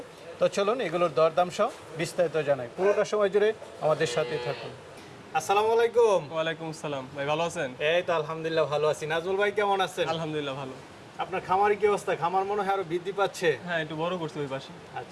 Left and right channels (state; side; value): identical; both; correlation 1.00